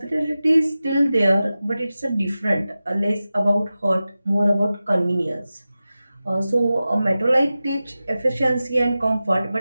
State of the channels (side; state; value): both; inverted; correlation -0.95